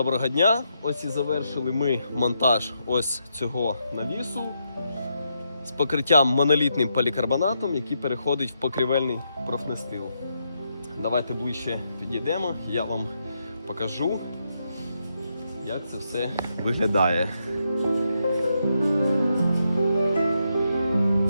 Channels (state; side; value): inverted; both; correlation -0.81